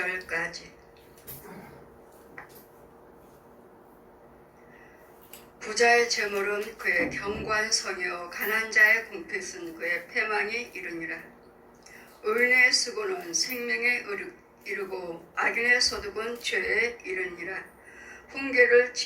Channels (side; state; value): both; identical; correlation 1.00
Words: 부자의 재물은 그의 경관성이요 가난한 자의 공핏은 그의 패망이 이르니라. 의인의 수고는 생명에 이르고 악인의 소득은 죄에 이르니라. 훈계를